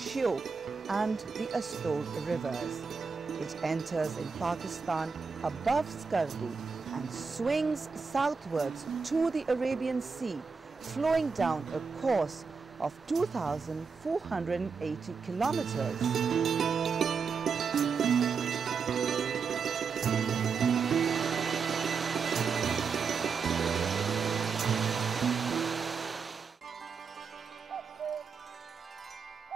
and the Astor rivers. It enters in Pakistan above Skardu and swings southwards to the Arabian Sea, flowing down a course of 2,480 kilometers.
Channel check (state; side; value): quieter; left; 5.4 dB